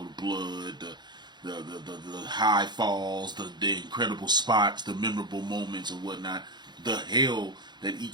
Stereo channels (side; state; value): left; late; 0.21 ms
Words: blood, the high falls, the incredible spots, the memorable moments and whatnot, the hell that